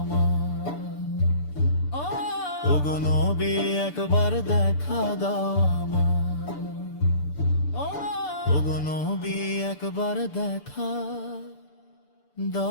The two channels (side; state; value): right; late; 6.8 ms